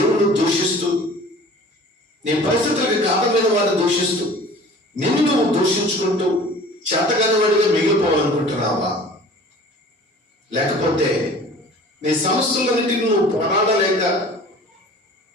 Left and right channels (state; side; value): normal; both; correlation 0.45